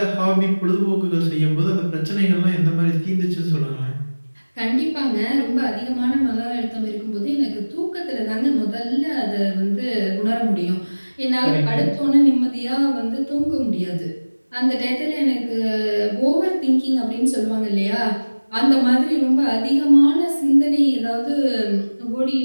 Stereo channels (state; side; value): inverted; both; correlation -1.00